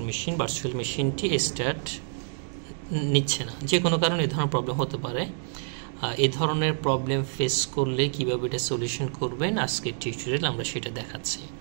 মেশিনটি স্টার্ট নিচ্ছে না। যে কোনো কারণে এই ধরনের প্রবলেম হতে পারে। এই ধরনের প্রবলেম ফেস করলে কীভাবে এটা সলিউশন করবেন আজকের টিউটোরিয়াল আমরা সেটা দেখাচ্ছি।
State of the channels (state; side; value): silent; left; digital silence